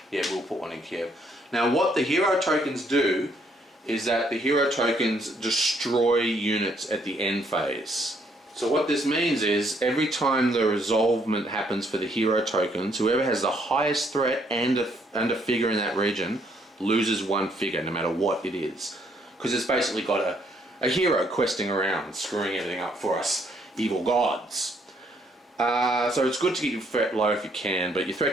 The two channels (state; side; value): normal; both; correlation 0.69